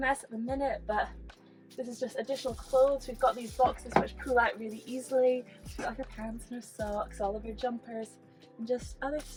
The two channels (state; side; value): identical; both; correlation 1.00